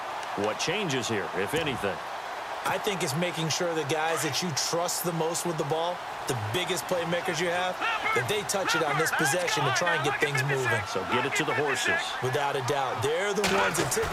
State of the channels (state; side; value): identical; both; correlation 1.00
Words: What changes here, if anything? I think it's making sure the guys that you trust the most with the ball, the biggest playmakers you have, that they touch it on this possession to try and get things moving. So get it to the horses. Without a doubt. They're the ones that